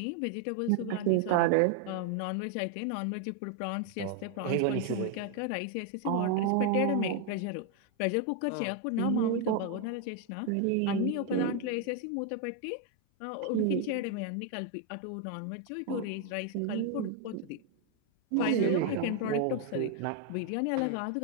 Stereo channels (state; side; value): different; both; correlation 0.01